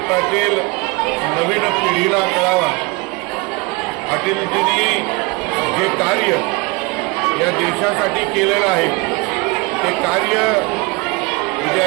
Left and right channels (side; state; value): left; quieter; 26.7 dB